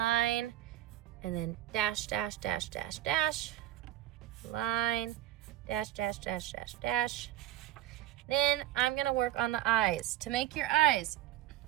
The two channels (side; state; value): left; quieter; 14.3 dB